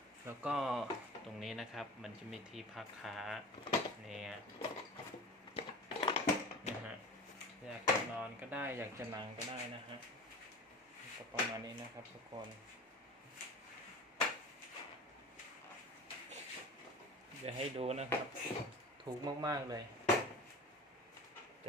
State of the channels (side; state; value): both; normal; correlation 0.36